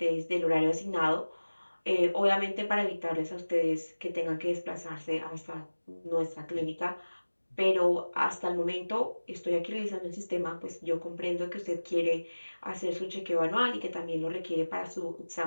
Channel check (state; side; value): inverted; both; correlation -1.00